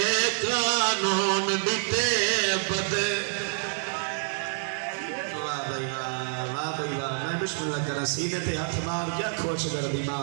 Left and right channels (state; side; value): silent; left; 60 dB below the other